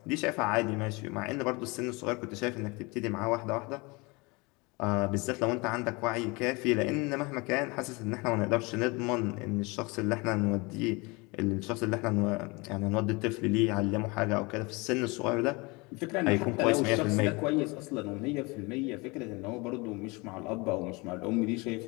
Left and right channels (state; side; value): quieter; right; 26.4 dB